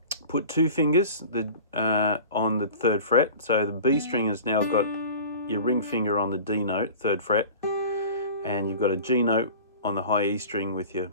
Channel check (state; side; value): inverted; both; correlation -0.39